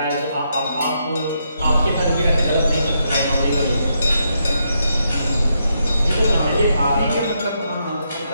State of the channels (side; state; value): both; inverted; correlation -0.79